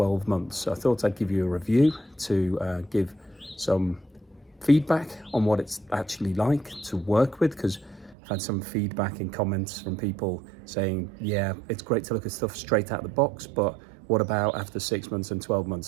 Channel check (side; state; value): left; drops out; at 8.2 s